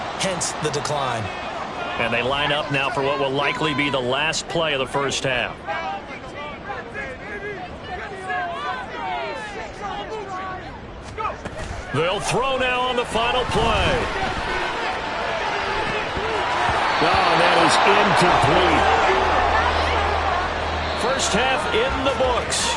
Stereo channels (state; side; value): identical; both; correlation 1.00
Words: hence the decline. And they line up now for what will likely be the last play of the first half. They'll throw now on the final play. Oh, that is incomplete. First half in the